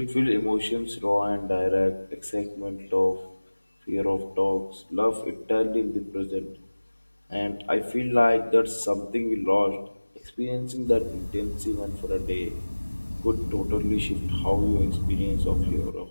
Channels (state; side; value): inverted; both; correlation -1.00